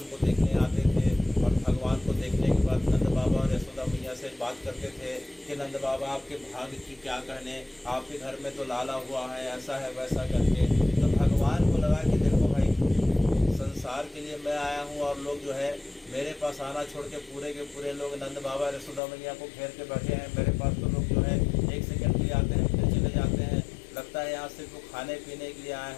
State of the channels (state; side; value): drops out; right; at 19.0 s